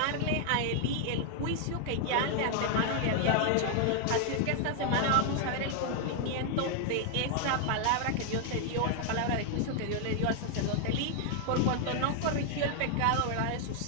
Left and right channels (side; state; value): both; different; correlation 0.00